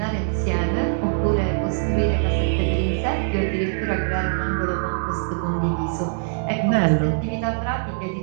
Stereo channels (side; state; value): left; silent; digital silence